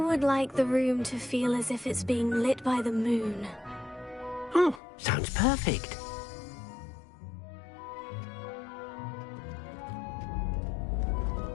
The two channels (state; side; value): drops out; right; at 4.8 s